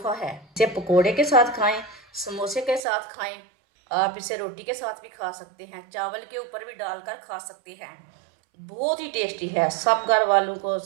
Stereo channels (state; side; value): drops out; left; at 2.8 s